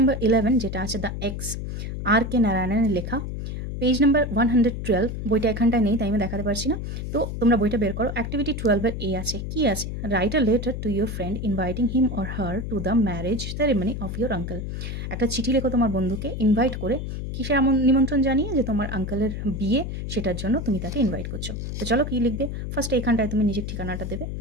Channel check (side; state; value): left; noise; hum, 5 dB below the sound